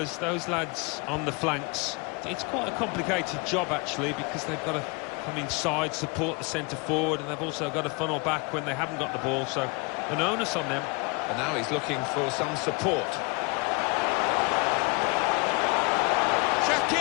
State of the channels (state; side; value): quieter; right; 29.4 dB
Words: those lads on the flanks, it's quite a complicated job actually, because they've got to come inside, support the centre forward, and they've also got to funnel back when they haven't got the ball, so an onus on them. And now he's looking for some support.